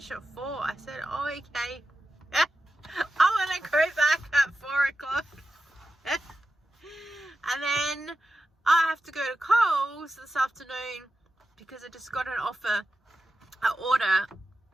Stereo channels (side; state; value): both; normal; correlation 0.91